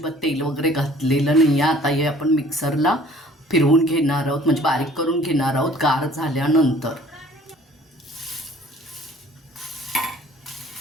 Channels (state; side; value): normal; both; correlation 0.53